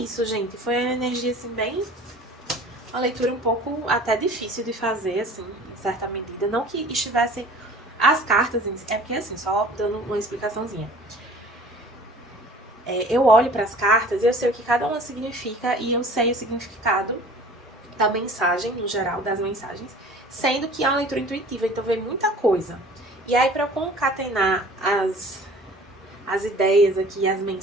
gente. Foi uma energia, assim, bem... Uma leitura um pouco até difícil de fazer, assim, em certa medida. Não que estivesse... As cartas, é porque, assim, só dando uma explicaçãozinha. Eu olho para as cartas e eu sei o que cada uma significa e eu sei o significado da mensagem, no geral, das mensagens, sendo que é uma leitura intuitiva, então vem muita coisa. E aí, para eu concatenar as ideias aqui, as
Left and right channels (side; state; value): both; normal; correlation 0.46